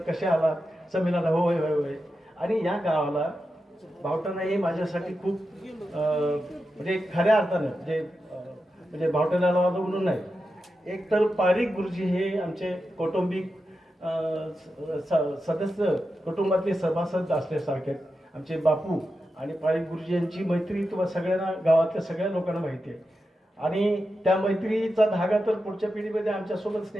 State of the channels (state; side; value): normal; both; correlation 0.90